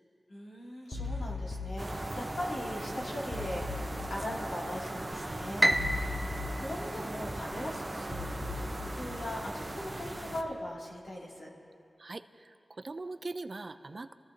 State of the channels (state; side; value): normal; both; correlation 0.94